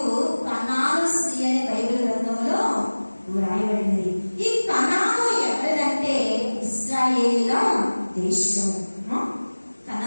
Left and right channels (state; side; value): inverted; both; correlation -1.00